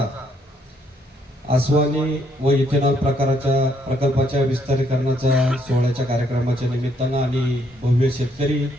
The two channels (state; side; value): normal; both; correlation 0.71